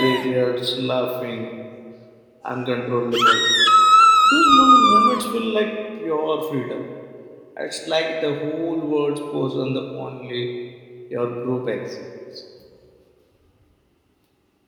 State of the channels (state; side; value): identical; both; correlation 1.00